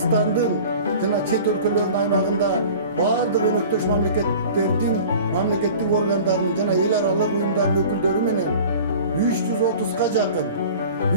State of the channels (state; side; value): inverted; both; correlation -0.42